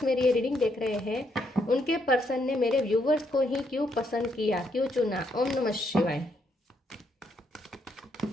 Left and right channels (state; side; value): normal; both; correlation 0.75